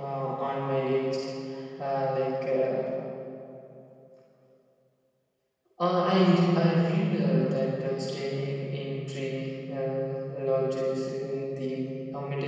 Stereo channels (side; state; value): both; identical; correlation 1.00